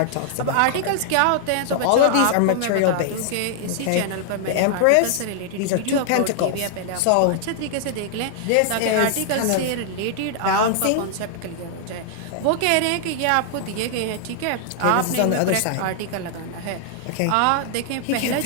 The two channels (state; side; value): different; both; correlation -0.01